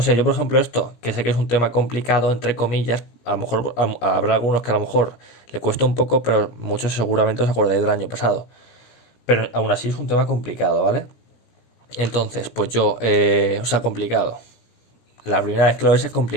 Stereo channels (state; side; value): late; right; 17 ms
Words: yo por ejemplo esto, que sé que es un tema complicado, entre comillas, a lo mejor habrá algunos que a lo mejor le cuesta un poco, pero muchos seguramente os acordáis del año pasado. Pero aún así es un tema complicado, ¿vale? Entonces, pues yo, o sea, complicado. La primera vez que lo ves es